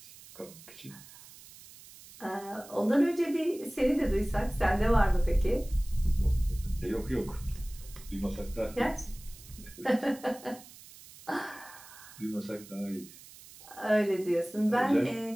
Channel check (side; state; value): right; noise; hiss, 19 dB below the sound